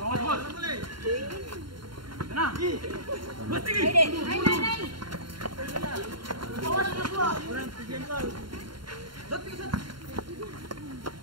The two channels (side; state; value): left; late; 0.73 ms